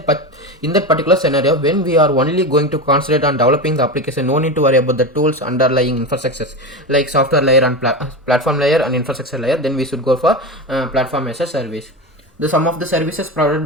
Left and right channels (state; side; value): normal; both; correlation 0.21